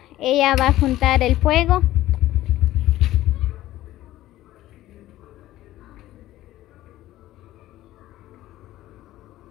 Ella va a juntar el fuego.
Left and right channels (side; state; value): right; quieter; 15.1 dB